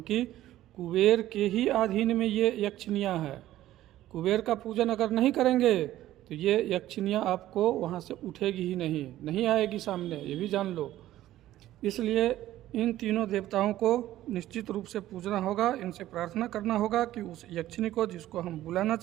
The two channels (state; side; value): quieter; left; 14.1 dB